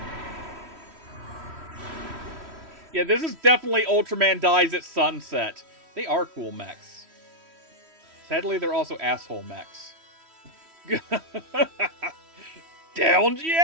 Yeah, this is definitely Ultraman dies at sunset. They are cool mechs. Sadly, they're also asshole mechs. Downed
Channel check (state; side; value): late; left; 3.1 ms